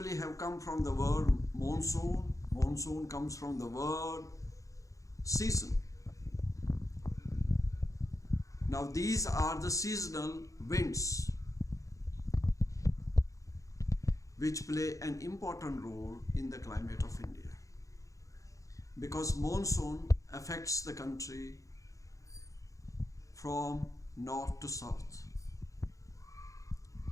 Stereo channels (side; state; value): right; late; 0.16 ms